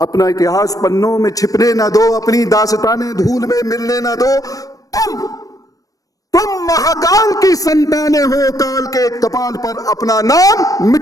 इतिहास पन्नों में छिपने ना दो, अपनी दास्तानें धूल में मिलने ना दो। तुम महाकाल की संतानें हो, काल के कपाल पर अपना नाम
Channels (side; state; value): right; late; 0.17 ms